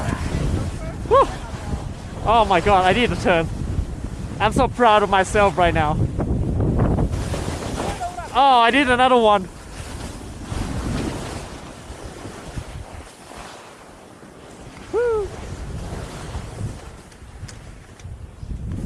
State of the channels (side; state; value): both; identical; correlation 1.00